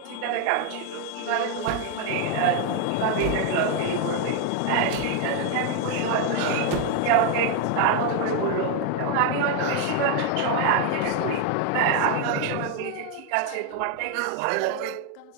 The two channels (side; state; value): both; different; correlation 0.01